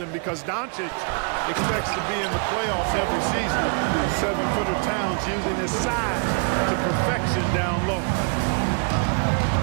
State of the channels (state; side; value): quieter; left; 39.3 dB